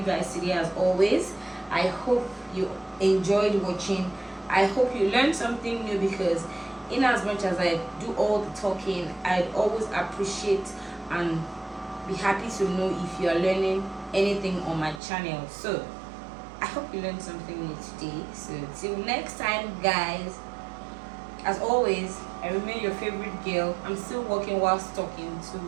guys today, as always. I hope you enjoyed watching. I hope you learned something new, because in as much as I do all the talking, I'd always appreciate and be happy to know if you are learning anything on my channel. So I hope you learned something new today. So till next time, guys, as always, I remain your favorite girl. I'm still working whilst talking to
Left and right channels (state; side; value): drops out; left; at 15.0 s